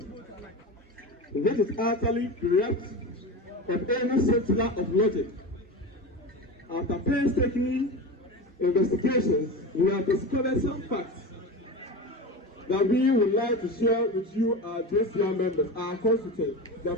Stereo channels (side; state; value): both; normal; correlation 0.26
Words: which is utterly bereft of any scintilla of logic. After painstaking investigations, we have discovered some facts that we would like to share with you, our JCR members, our constituents, the